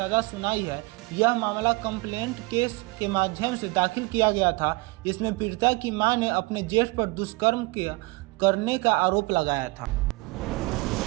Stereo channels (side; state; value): left; quieter; 25.2 dB